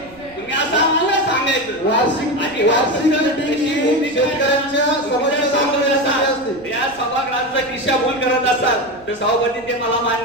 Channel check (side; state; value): right; noise; rumble, 26 dB below the sound